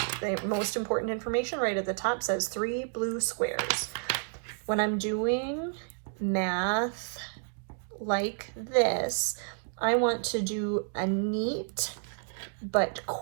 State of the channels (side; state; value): left; silent; 58 dB below the other